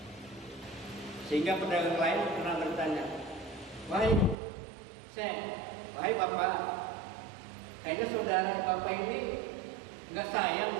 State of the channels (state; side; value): drops out; left; at 4.4 s